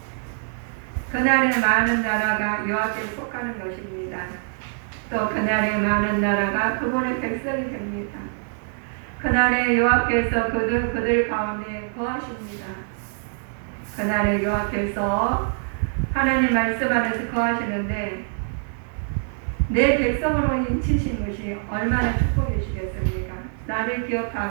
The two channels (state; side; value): silent; left; 62 dB below the other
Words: 그날에 많은 나라가 여호와께 속하는 것입니다. 또 그날에 많은 나라가 그분의 백성이 됩니다. 그날에 여호와께서 그들 가운데 거하십니다. 그날에 여호와께서 하나님 말씀 안에서 거하시는데 내 백성으로 인치신 것이 얼마나 축복이시겠습니까? 나를